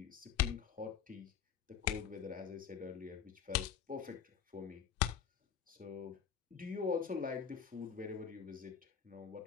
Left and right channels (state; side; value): quieter; right; 8.1 dB